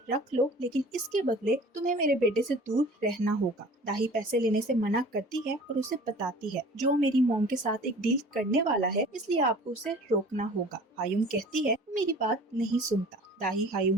रख लो, लेकिन इसके बदले तुम्हें मेरे बेटे से दूर रहना होगा। दाही पैसे लेने से मना करती है और उसे बताती है, जो मेरी मॉम के साथ एक डील करने वाला है, इसलिए आपको उसे रोकना होगा। हायुम कहती है, मेरी बात नहीं सुनता। दाही हायुम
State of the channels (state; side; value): normal; both; correlation 0.45